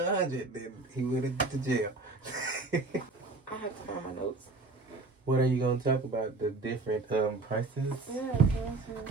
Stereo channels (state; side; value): quieter; left; 3.5 dB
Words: 100, then he went to jail. I have to find my notes. What are you going to talk about? The different prices? Yeah.